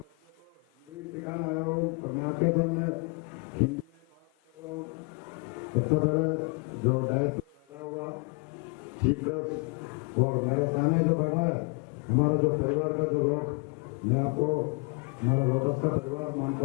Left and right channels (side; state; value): right; quieter; 33.4 dB